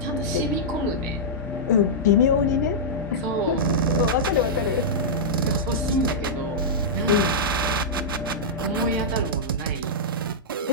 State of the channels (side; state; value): both; normal; correlation -0.10